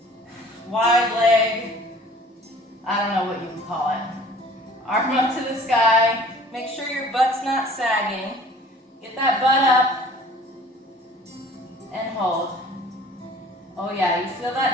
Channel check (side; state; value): both; normal; correlation 0.49